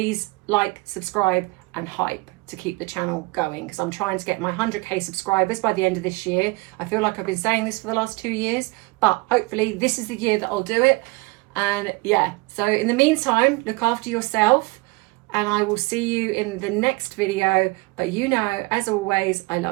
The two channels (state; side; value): quieter; left; 24.7 dB